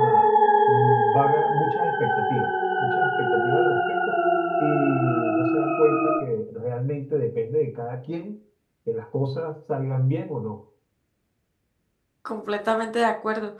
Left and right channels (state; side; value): identical; both; correlation 1.00